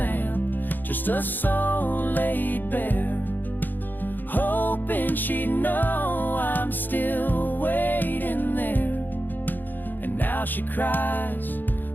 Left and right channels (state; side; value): late; right; 0.089 ms